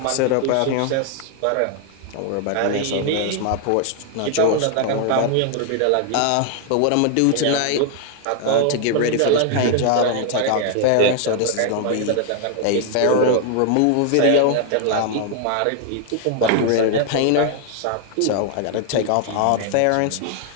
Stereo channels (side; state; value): both; different; correlation 0.00